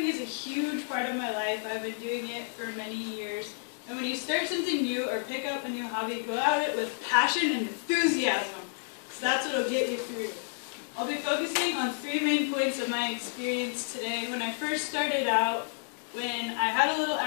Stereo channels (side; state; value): right; silent; digital silence